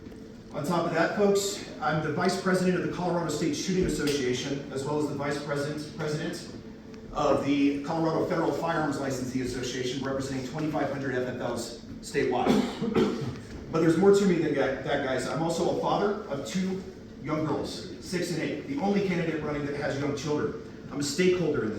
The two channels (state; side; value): identical; both; correlation 1.00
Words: On top of that, folks, I'm the vice president of the Colorado State Shooting Association, as well as the vice president of the Colorado Federal Firearms Licensee Association, representing 2,500 FFLs statewide. But there's more to me than that, guys. I'm also a father of 2 young girls, 6 and 8, the only candidate running that has young children. I'm a stakeholder in